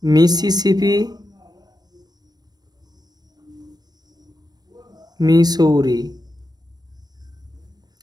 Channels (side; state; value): left; late; 0.19 ms